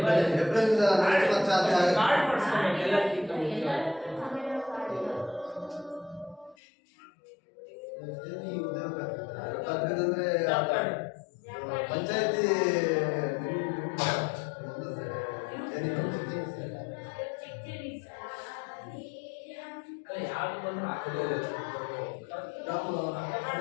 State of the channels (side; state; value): right; drops out; at 6.6 s